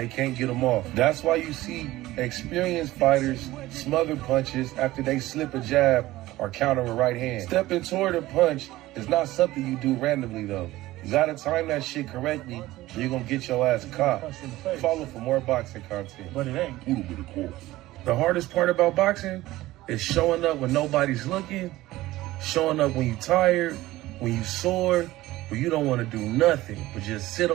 can't get them off. That's why you see experienced fighters smother punches after they slip a jab or counter a right hand. Stepping toward a punch is not something you do randomly, though. You gotta time that shit correctly, or you're gonna get your ass caught. Follow for more boxing content. But it ain't. The hardest part about boxing is showing up when nobody's looking, showing up when you're tired, when you're sore, when you don't want to do nothing but just sit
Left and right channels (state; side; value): quieter; left; 17.1 dB